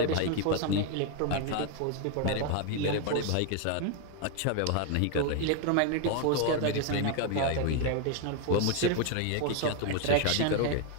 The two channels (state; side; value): different; both; correlation 0.01